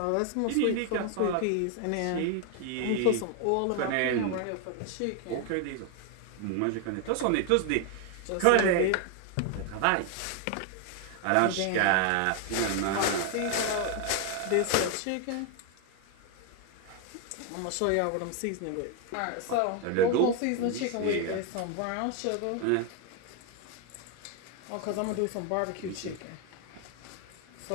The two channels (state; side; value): different; both; correlation 0.01